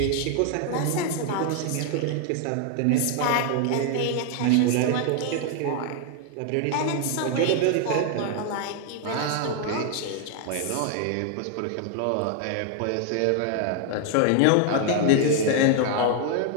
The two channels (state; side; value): different; both; correlation 0.00